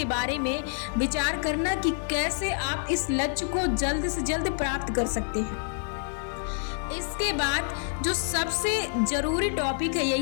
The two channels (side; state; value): right; silent; digital silence